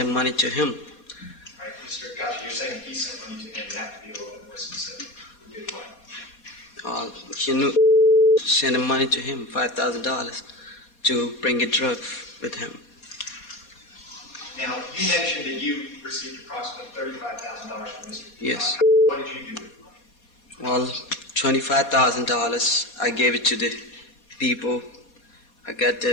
money to him. Right, Mr. Ghazi, you're saying he sent money to him. You have to be a little bit more specific. Who did what? He sent the money to him, $5,000, to bring a drug with him. Now, you mentioned that you received approximately $35,000 from Mr. Yes. What did you do with it? Well, $25,000, I gave it to the people I got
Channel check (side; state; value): right; late; 4.2 ms